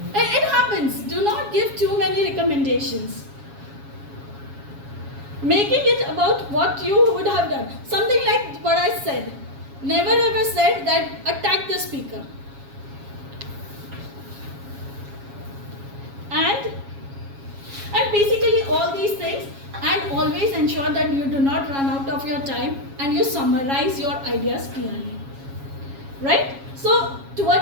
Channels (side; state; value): left; late; 7.3 ms